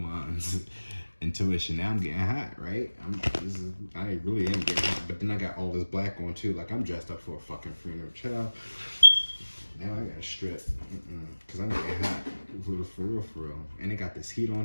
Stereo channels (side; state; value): both; inverted; correlation -1.00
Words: Intuition. Now I'm getting hot, right? I really am getting hot. But then I got all this black on too. Like, I'm dressed up for a fucking funeral. Child. Now I got a strip. Because I'm getting hot. For real. And it got this heat on